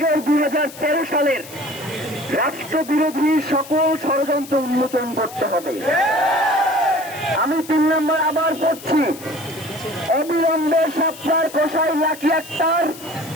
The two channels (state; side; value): noise; left; hiss, 16 dB below the sound